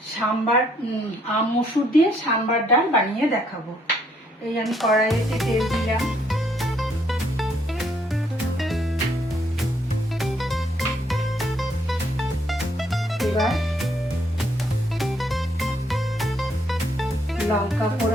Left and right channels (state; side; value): normal; both; correlation 0.69